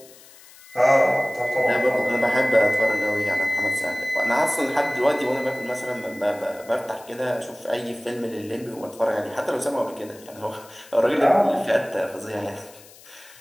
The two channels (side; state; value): left; noise; hiss, 22 dB below the sound